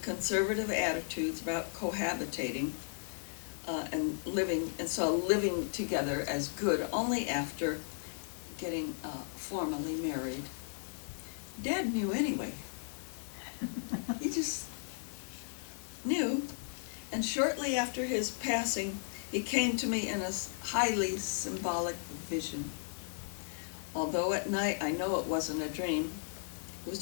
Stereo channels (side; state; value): right; silent; digital silence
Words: conservative attitudes about cohabitating and saw living together as good only after getting formally married. Dad knew anyway. He just knew. And shortly after his passing, he came to me in a highly symbolic vision. Although at night I know it wasn't a dream, it was